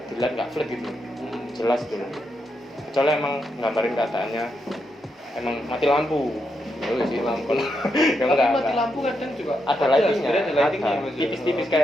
dilihat nggak flat gitu, jelas gitu. Kecuali emang gambarin keadaannya emang mati lampu, mati lampu. Ya Tapi enggak, mati lampu kadang juga ada lightingnya, lightingnya ada tipis-tipis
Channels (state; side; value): normal; both; correlation 0.82